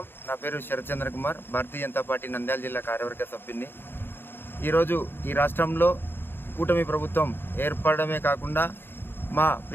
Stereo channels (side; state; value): right; late; 0.10 ms